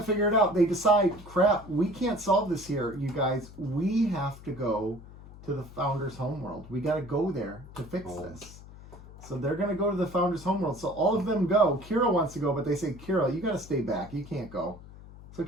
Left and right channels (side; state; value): left; noise; hum, 18 dB below the sound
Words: figure it out. They decide, crap, we can't solve this here, you guys. We have to go to the Founder's homeworld. We got to go there to fix this. So they're going to go to the Founder's homeworld. So all of them go. Kira wants to go, but they say, Kira, you got to stay back. You can't go. So